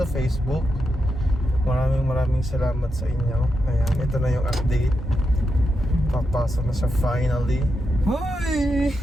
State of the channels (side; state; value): both; normal; correlation 0.86